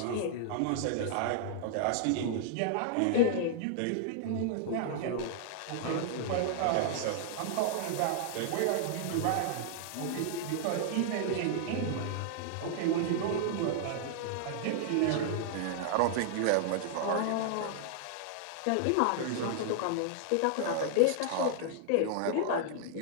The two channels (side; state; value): both; different; correlation -0.01